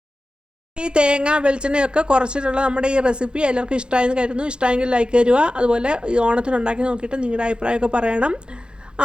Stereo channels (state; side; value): late; left; 0.051 ms